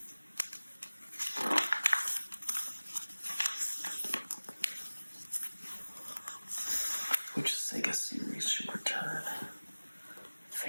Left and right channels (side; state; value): both; inverted; correlation -1.00